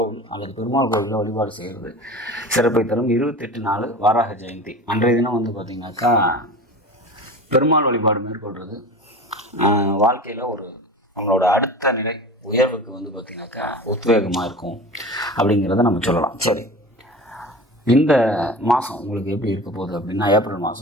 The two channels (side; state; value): both; normal; correlation 0.34